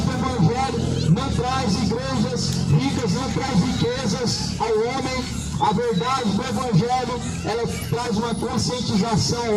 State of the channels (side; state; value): both; identical; correlation 1.00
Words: do evangelho não traz igrejas ricas, não traz riquezas ao homem. A verdade do Evangelho, ela traz uma conscientização